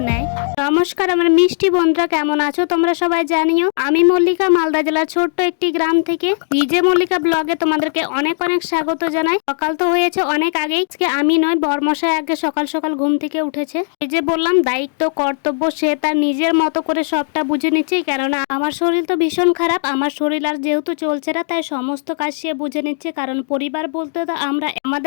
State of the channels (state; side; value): silent; right; digital silence